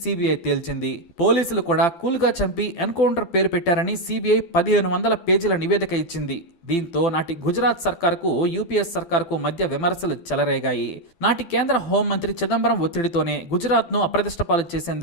తేల్చింది. పోలీసులు కూడా కూల్గా చంపి ఎన్కౌంటర్ పేరు పెట్టారని సిబిఐ 1500 పేజీల నివేదిక ఇచ్చింది. దీంతో నాటి గుజరాత్ సర్కారుకు, యూపీఎస్ సర్కారుకు మధ్య విమర్శలు చెలరేగాయి. నాటి కేంద్ర హోంమంత్రి చిదంబరం ఒత్తిడితోనే గుజరాత్ను అప్రతిష్టపాలు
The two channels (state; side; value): late; right; 12 ms